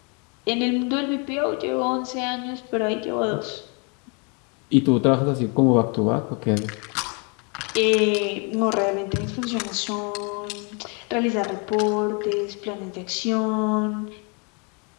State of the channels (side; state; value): right; quieter; 34.4 dB